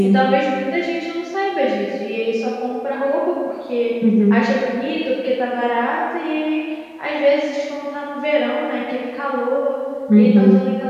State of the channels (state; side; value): identical; both; correlation 1.00